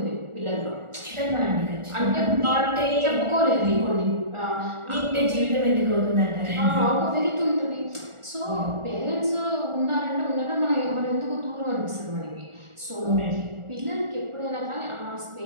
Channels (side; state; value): left; late; 1.4 ms